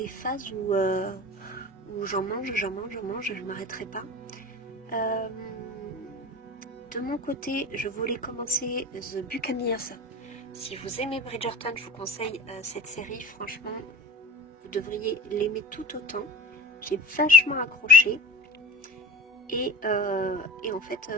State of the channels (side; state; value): both; normal; correlation 0.34